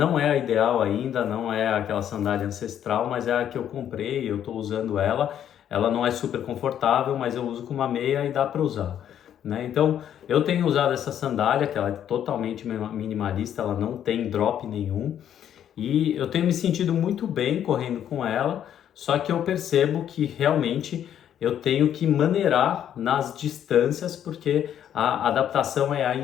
é a ideal ainda, não é aquela sandália ancestral, mas é a que eu comprei, eu estou usando ela. Ela não é super confortável, mas eu uso com uma meia e dá para usar, né? Então, eu tenho usado essa sandália, que ela é totalmente minimalista, ela não tem drop nenhum, e eu tenho me sentido muito bem correndo com ela, só que eu percebo que realmente eu tenho que maneirar nas distâncias, porque a adaptação é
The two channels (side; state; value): right; quieter; 10.0 dB